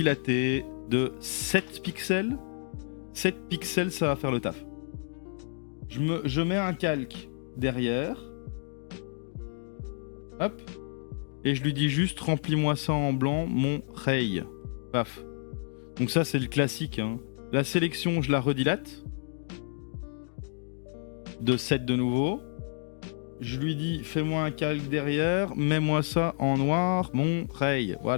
de 7 pixels. 7 pixels, ça va faire le taf. Je mets un calque derrière. Hop. Et je lui dis juste, remplis-moi ça en blanc, mon ray. Paf. Donc ça, c'est le classique. Hein. La sélection, je la redilate. De 7 de nouveau. Je lui dis, fais-moi un calque derrière, mets-moi ça en noir, mon ray.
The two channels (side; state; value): right; silent; digital silence